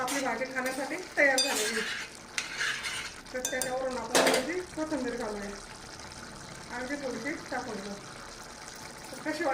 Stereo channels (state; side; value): identical; both; correlation 1.00